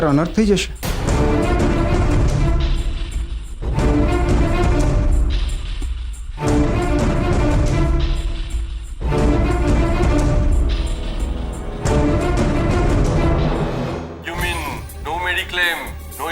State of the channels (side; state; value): both; identical; correlation 1.00